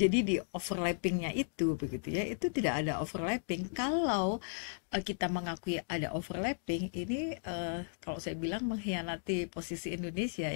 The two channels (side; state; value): right; silent; digital silence